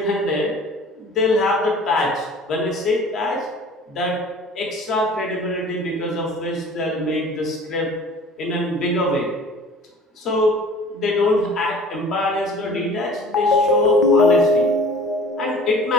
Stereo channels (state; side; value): normal; both; correlation 0.46